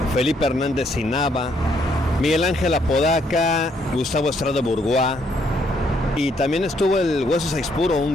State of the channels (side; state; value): both; normal; correlation 0.71